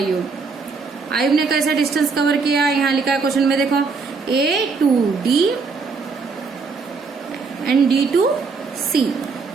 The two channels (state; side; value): quieter; left; 4.7 dB